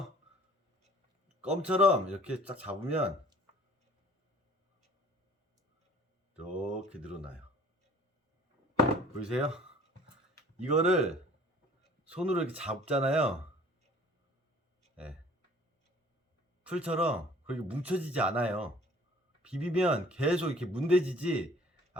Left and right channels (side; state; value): both; normal; correlation 0.52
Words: 껌처럼 이렇게 딱 잡으면 이렇게 늘어나요. 보이세요? 이거를 손으로 이렇게 잡잖아요. 네. 풀처럼 그렇게 뭉쳐지지 않아요. 비비면 계속 이렇게 문대지지